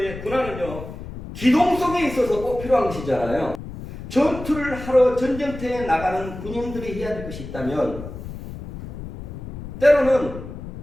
군화는요, 기동성에 있어서 꼭 필요한 것이잖아요. 전투를 하러 전쟁터에 나가는 군인들이 해야 될 것이 있다면 때로는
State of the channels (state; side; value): noise; left; rumble, 11 dB below the sound